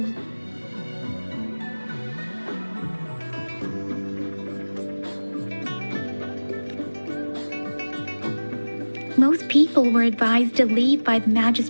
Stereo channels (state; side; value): inverted; both; correlation -1.00